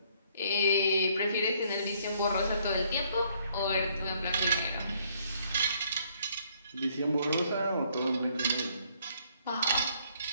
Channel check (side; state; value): both; inverted; correlation -0.66